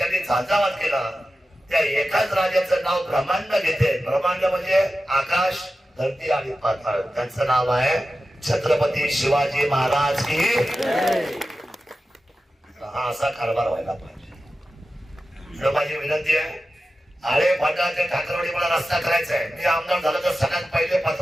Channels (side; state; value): both; normal; correlation 0.93